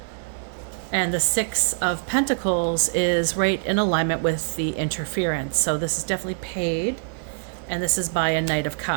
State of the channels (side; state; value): left; silent; 62 dB below the other